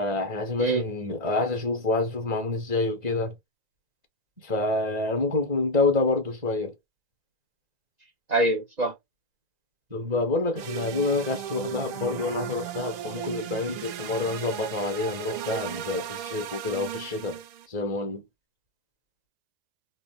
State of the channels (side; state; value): left; late; 1.9 ms